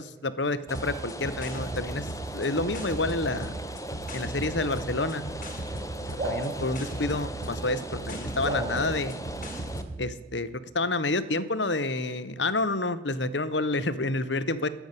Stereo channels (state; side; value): normal; both; correlation 0.17